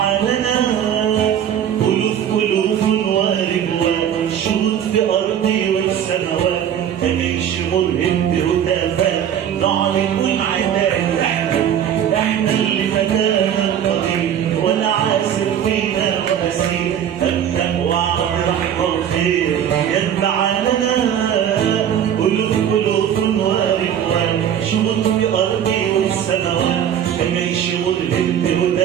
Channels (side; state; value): left; quieter; 9.5 dB